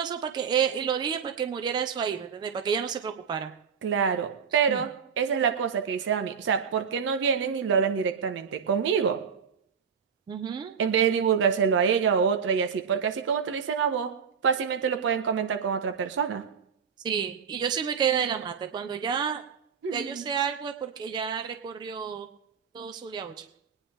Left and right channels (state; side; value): quieter; left; 6.7 dB